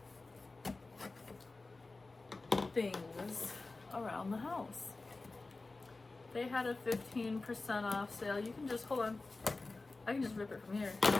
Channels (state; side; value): quieter; right; 3.5 dB